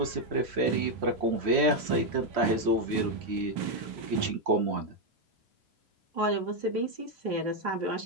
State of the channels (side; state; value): left; late; 3.1 ms